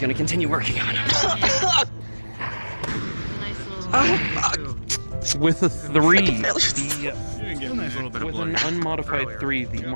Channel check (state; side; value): inverted; both; correlation -1.00